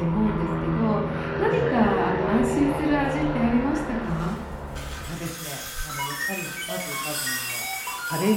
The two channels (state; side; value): identical; both; correlation 1.00